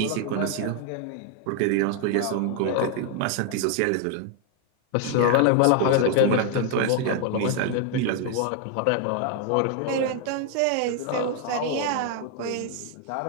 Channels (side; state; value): both; different; correlation 0.00